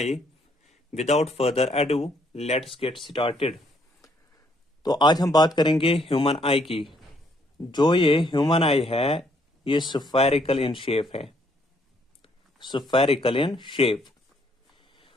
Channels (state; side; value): normal; both; correlation 0.69